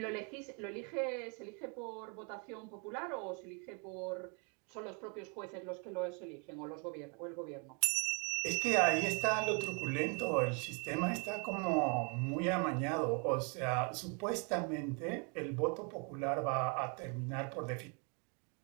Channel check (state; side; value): quieter; left; 36.1 dB